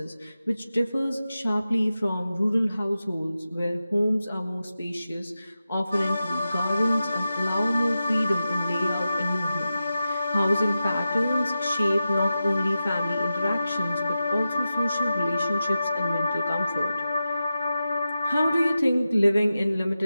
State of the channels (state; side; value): inverted; both; correlation -0.91